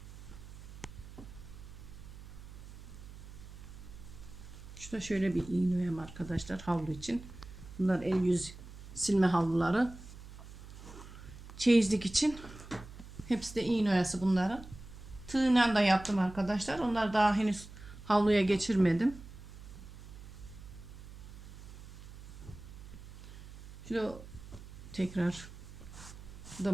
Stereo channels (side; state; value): right; noise; hum, 15 dB below the sound